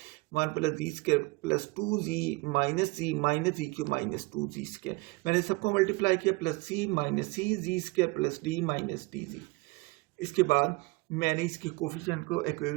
1 plus ji square plus 2 z minus z cube minus 2 z square, मैंने सबको multiply किया, plus c minus c z square plus d minus d z. इसके बाद मैंने इसके coefficient को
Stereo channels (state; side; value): quieter; left; 24.7 dB